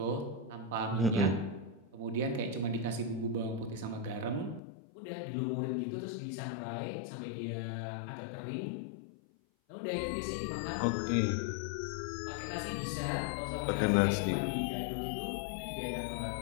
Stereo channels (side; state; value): right; drops out; at 4.6 s